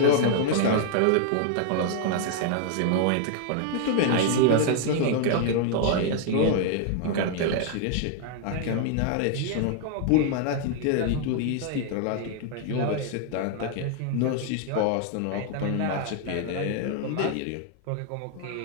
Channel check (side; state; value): both; different; correlation 0.00